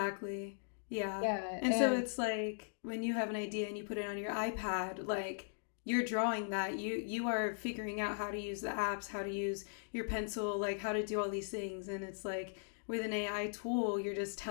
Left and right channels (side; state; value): right; silent; digital silence